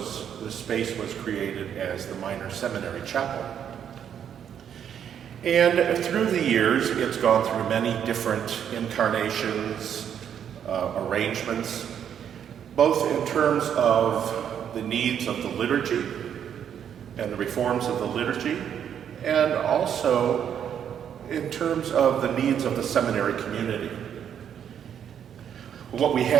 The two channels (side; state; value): left; quieter; 8.8 dB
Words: space was created as the minor seminary chapel. And through the years, it's gone through many different incarnations, arrangements, both in terms of the needs of the liturgy and the reforms of the liturgy, and also in terms of the needs of the seminary community. What we